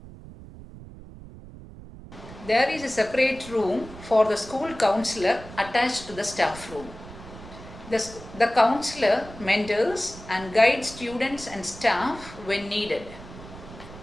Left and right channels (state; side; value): noise; right; rumble, 16 dB below the sound